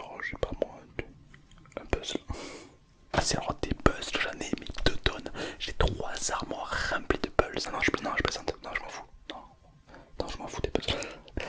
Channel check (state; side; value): identical; both; correlation 1.00